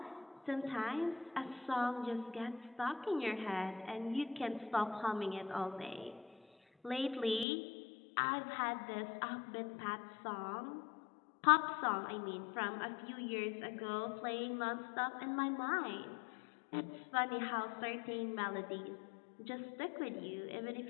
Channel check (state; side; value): drops out; right; at 7.5 s